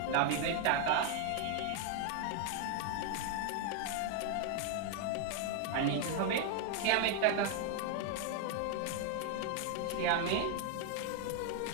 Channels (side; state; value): both; different; correlation 0.00